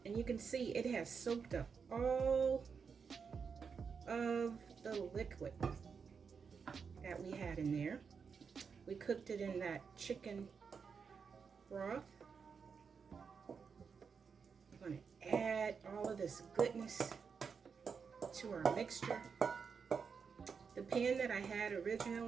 and you can see it has soaked up all of the liquid that we had in there. We cooked it in that chicken broth. I'm going to add all of this goodness to our mixture. The pan that I had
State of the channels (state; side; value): quieter; left; 5.9 dB